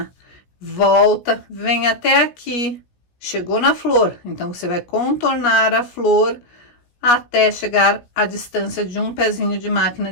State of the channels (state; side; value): late; right; 17 ms